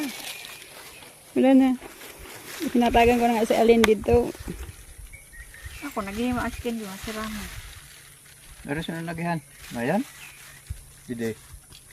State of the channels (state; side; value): identical; both; correlation 1.00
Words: Wala na. Pinatagan ko na nga si Alin dito. Ako, naging ma-askin di masirama. Meron siya nalagihan. Ayan. Hindi.